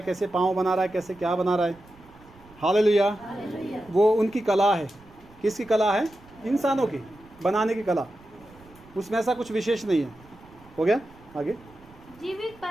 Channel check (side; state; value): right; noise; rumble, 25 dB below the sound